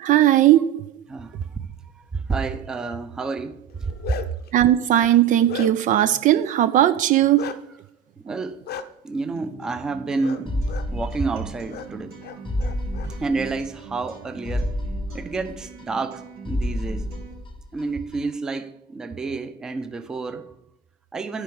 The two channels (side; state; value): left; quieter; 7.8 dB